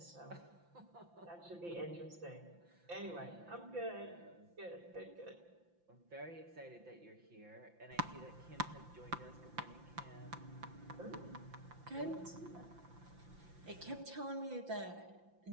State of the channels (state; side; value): late; left; 5.8 ms